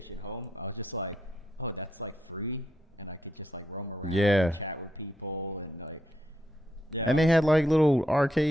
Home, I was just like, oh, that's, like, free? And I could just, like, roam around and chat with people and, like, yeah. And they had, like, little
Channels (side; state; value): both; normal; correlation 0.78